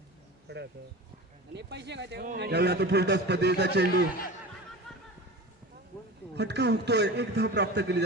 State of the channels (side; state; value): both; normal; correlation 0.33